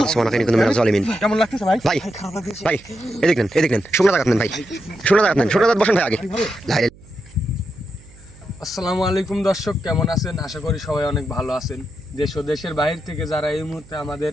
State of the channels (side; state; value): right; noise; hum, 23 dB below the sound